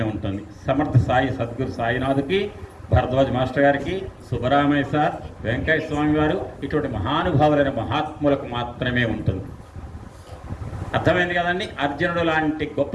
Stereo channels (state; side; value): identical; both; correlation 1.00